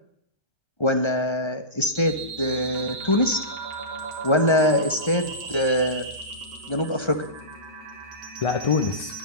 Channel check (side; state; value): right; late; 1.3 ms